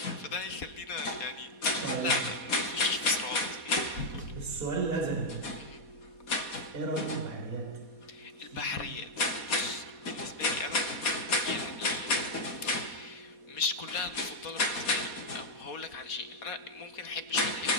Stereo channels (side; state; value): right; late; 4.2 ms